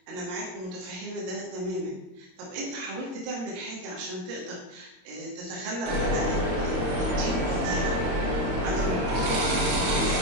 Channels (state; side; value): late; left; 22 ms